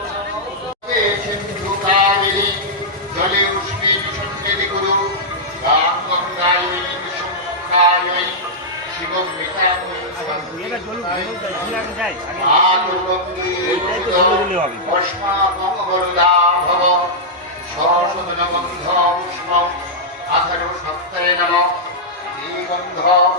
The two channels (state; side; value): normal; both; correlation -0.09